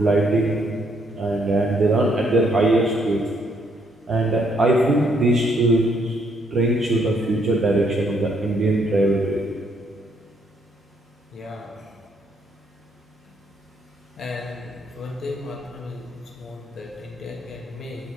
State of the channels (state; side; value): normal; both; correlation 0.71